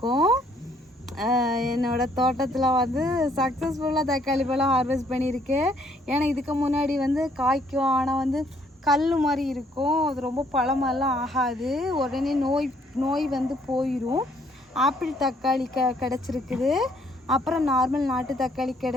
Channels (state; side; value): normal; both; correlation 0.66